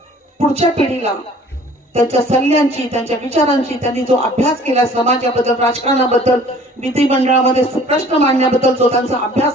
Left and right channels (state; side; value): normal; both; correlation 0.51